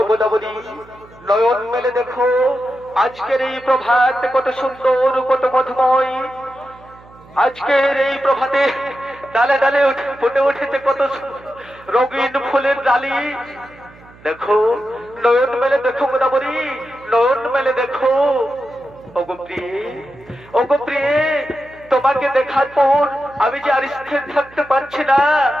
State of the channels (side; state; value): right; noise; hum, 24 dB below the sound